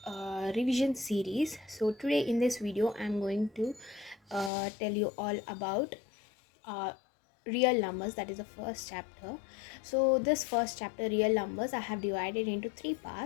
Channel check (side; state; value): right; drops out; at 4.5 s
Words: revision series. So today in this video, I'm going to tell you all about uh, real numbers. That is the first chapter. So this first chapter, real numbers, I have divided into three